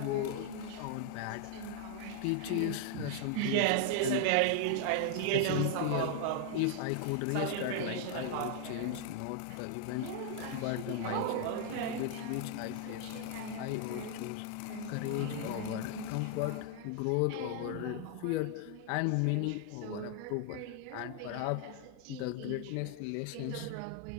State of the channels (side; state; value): both; different; correlation 0.00